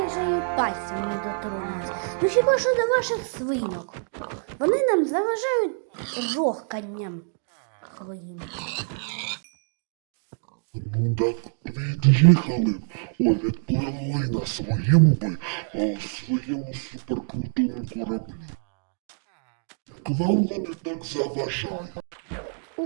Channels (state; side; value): silent; left; 61 dB below the other